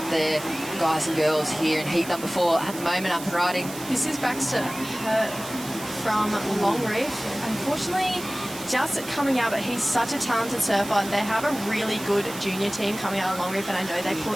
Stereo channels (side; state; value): right; noise; hiss, 13 dB below the sound